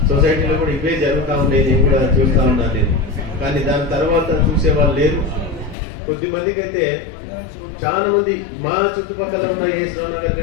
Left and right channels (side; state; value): right; drops out; at 5.8 s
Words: సొసైటీలో కూడా ఇవే జరుగుతూ ఉండేది, నేను కూడా చూస్తూ ఉన్నాను నేను. కానీ దాని తర్వాత చూసే వాళ్ళు లేరు. కొద్దిమందికి అయితే చాలా మంది మా చుట్టుపక్కల ఉన్న ఏశ్వరావు నగర్